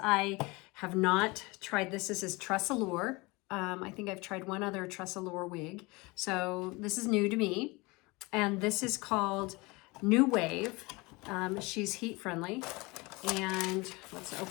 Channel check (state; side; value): quieter; right; 24.7 dB